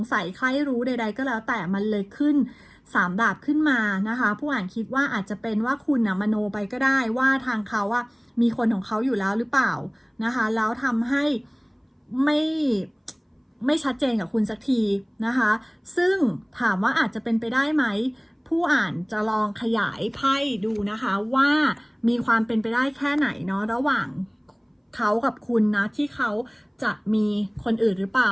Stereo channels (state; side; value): identical; both; correlation 1.00